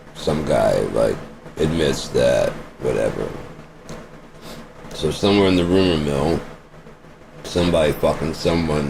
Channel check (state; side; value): identical; both; correlation 1.00